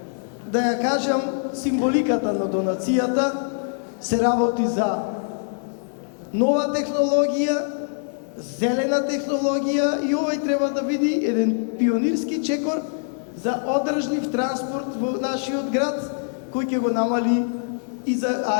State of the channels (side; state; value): right; silent; 63 dB below the other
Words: да ја кажам символиката на донацијата. Се работи за нова технологија, зелена технологија и овој треба да биде еден пионирски чекор за одржлив транспорт во нашиот град, кој ќе го намали и за